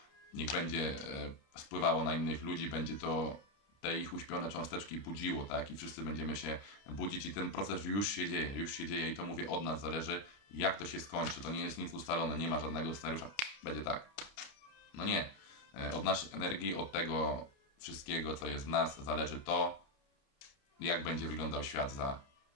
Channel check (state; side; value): late; right; 30 ms